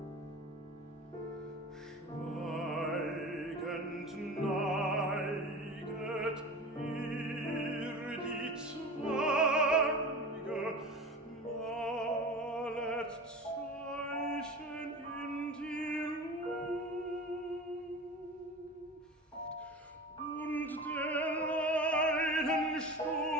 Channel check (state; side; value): normal; both; correlation 0.33